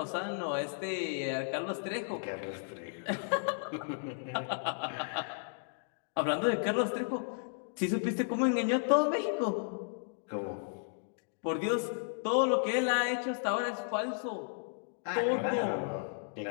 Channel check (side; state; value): right; silent; digital silence